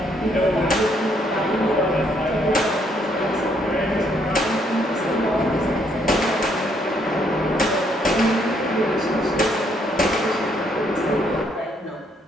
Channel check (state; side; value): normal; both; correlation 0.70